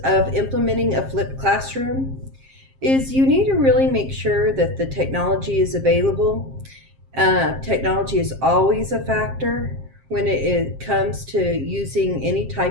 of implementing a flipped classroom. is you need to really make sure that the technology is available. Technology is always a factor when it comes to using any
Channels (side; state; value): left; late; 7.5 ms